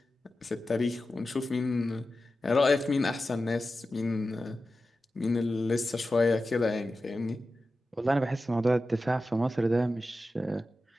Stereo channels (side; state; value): both; normal; correlation 0.93